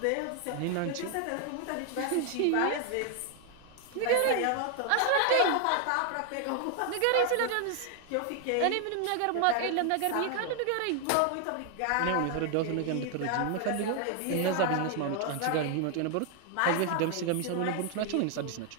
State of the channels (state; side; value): different; both; correlation 0.00